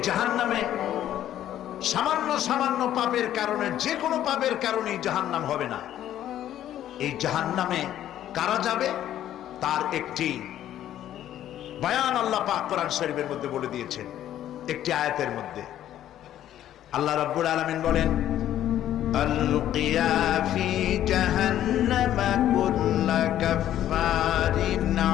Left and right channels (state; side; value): quieter; right; 11.9 dB